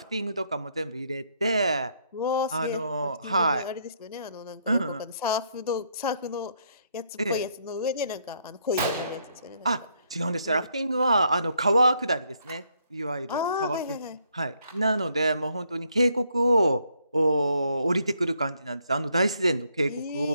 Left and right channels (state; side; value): inverted; both; correlation -0.72